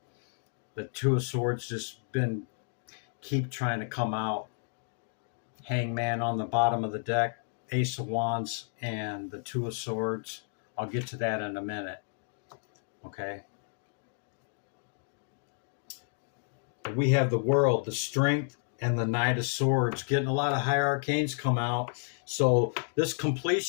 The Two of Swords just keep trying to come out. Hangman on the bottom of the deck, Ace of Wands, and the Two of Swords I'll get to that in a minute. Okay. We have the World, the Strength, and the Knight of Swords. Getting a lot of high arcanes come out. So this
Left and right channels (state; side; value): silent; right; digital silence